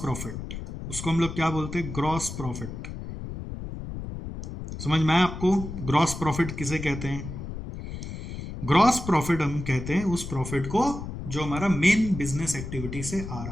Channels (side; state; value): left; noise; rumble, 8 dB below the sound